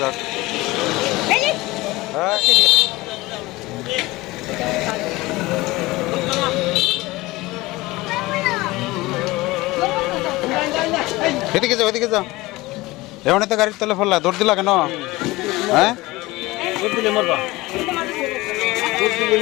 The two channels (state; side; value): quieter; right; 20.4 dB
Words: হ্যাঁ এদিকে যাও এদিকে যাও এমন তো গাড়ির তলে ফেললা দৌড় দিলা কেন হ্যাঁ